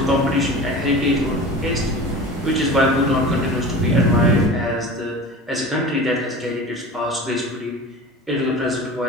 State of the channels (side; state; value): both; normal; correlation 0.35